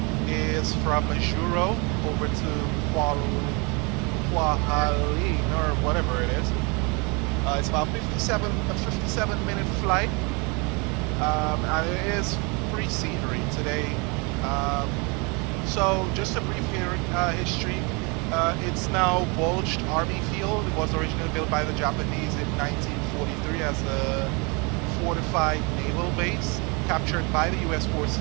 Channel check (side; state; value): left; quieter; 30.3 dB